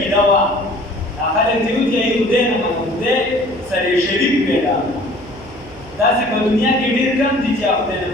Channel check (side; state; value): left; noise; hum, 22 dB below the sound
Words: وه دا خلک چې وایي چې خدای نه منو خدای سره یې شریک پیدا کړو. داسې په دنیا کې ډېر کم دي چې خدای نه